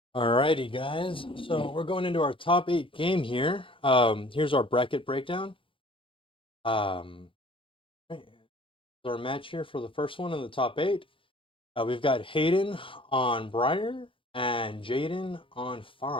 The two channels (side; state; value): right; late; 0.25 ms